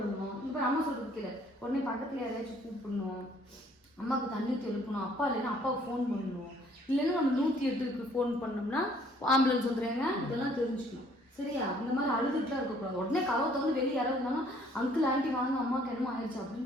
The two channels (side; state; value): both; normal; correlation 0.61